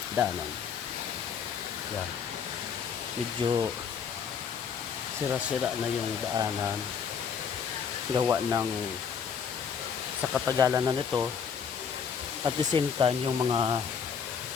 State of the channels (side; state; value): right; quieter; 6.9 dB